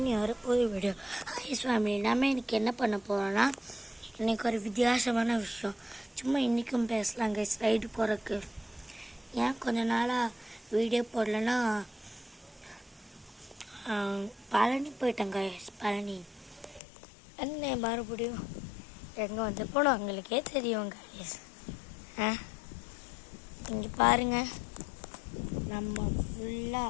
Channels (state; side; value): drops out; right; at 16.8 s